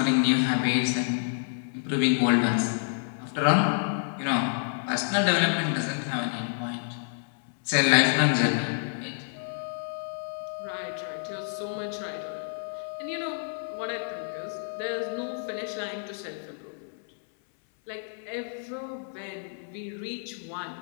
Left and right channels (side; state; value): right; silent; 59 dB below the other